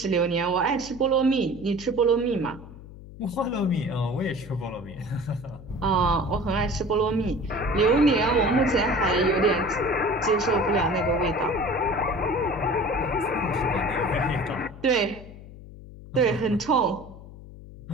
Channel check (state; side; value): noise; left; hum, 16 dB below the sound